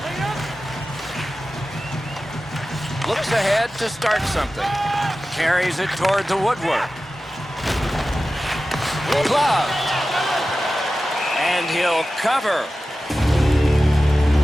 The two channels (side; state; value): both; normal; correlation 0.94